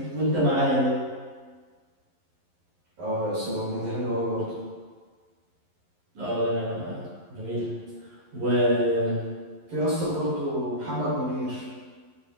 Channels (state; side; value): late; left; 11 ms